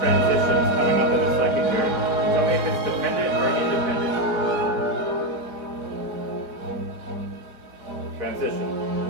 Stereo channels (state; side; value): late; left; 4.0 ms